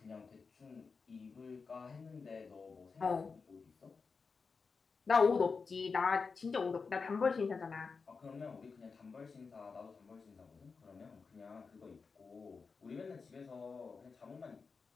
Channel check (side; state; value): right; quieter; 4.9 dB